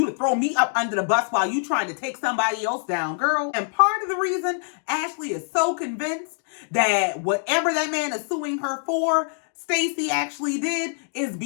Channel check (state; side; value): silent; right; digital silence